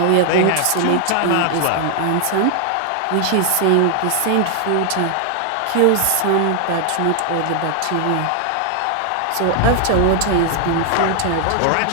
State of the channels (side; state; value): both; different; correlation 0.00